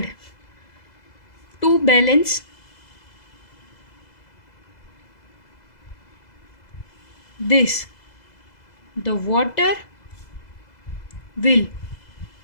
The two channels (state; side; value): late; right; 2.0 ms